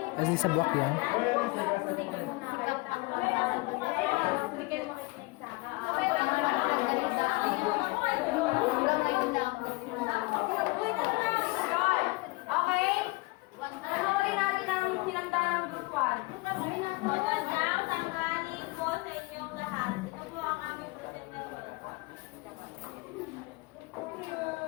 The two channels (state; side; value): quieter; right; 24.5 dB